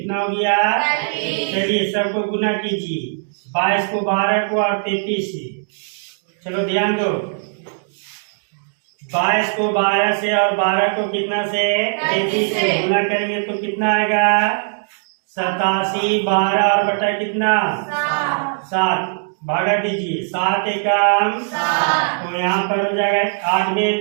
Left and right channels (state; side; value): silent; left; digital silence